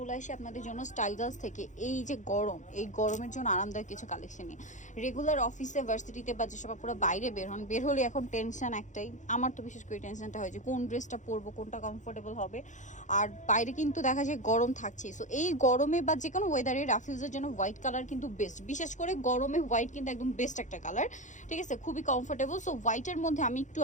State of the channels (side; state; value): right; late; 0.35 ms